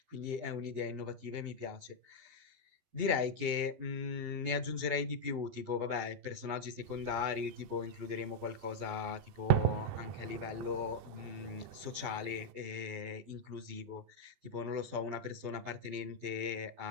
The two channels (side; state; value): left; late; 12 ms